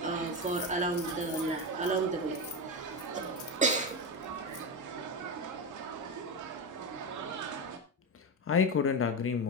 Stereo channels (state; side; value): normal; both; correlation 0.16